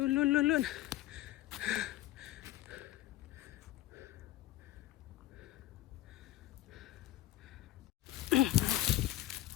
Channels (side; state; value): right; quieter; 15.1 dB